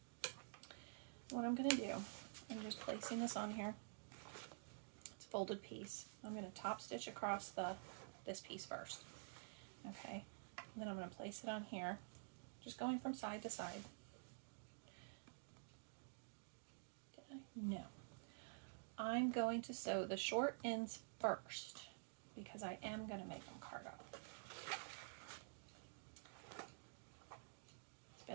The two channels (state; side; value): silent; left; digital silence